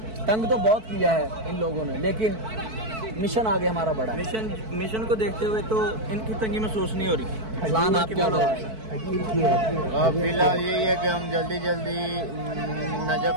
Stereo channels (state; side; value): late; left; 4.5 ms